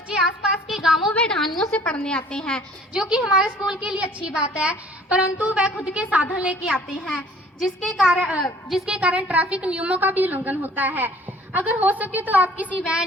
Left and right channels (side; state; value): both; normal; correlation 0.53